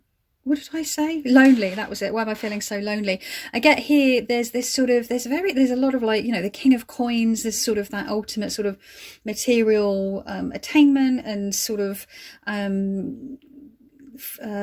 what did I say? Lonely, that was it. Why am I feeling so lonely? I get here, there's this sort of, there's a lot of like, you know, the King of Coins, this sort of that ultimate sort of material attainment and sort of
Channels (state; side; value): identical; both; correlation 1.00